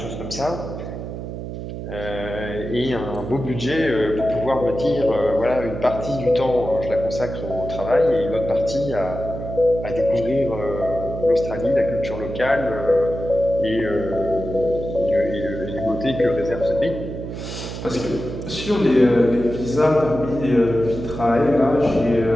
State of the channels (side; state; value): right; noise; hum, 8 dB below the sound